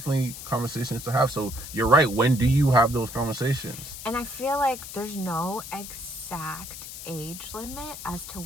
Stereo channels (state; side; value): noise; left; hiss, 11 dB below the sound